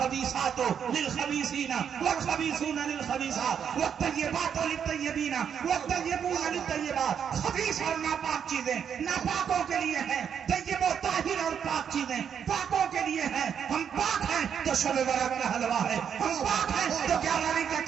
للخبیثین والخبیثون للخبیثات والطیبات للطیبین والطیبون للطیبات. خبیث اور ناپاک چیزیں ناپاکوں کے لیے ہیں، طیب و طاہر اور پاک چیزیں پاکوں کے لیے ہیں. ہم پاک ہیں تو شب برات کا حلوہ ہے، ہم پاک ہیں تو 11 کا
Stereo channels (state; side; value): quieter; left; 7.9 dB